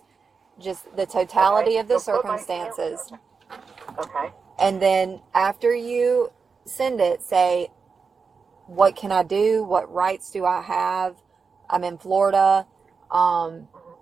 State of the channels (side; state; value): left; quieter; 5.2 dB